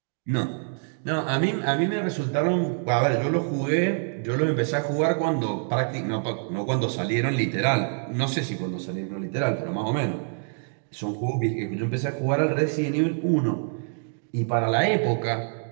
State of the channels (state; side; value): silent; left; 61 dB below the other